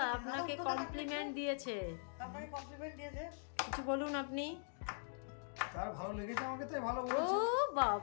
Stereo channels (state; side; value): silent; right; digital silence